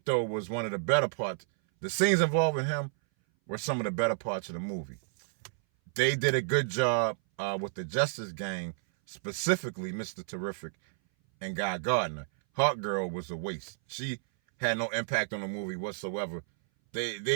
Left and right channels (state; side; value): silent; left; 57 dB below the other